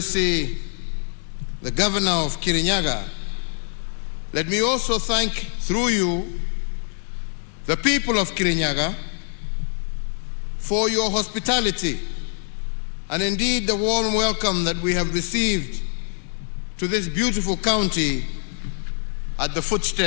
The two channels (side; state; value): right; silent; digital silence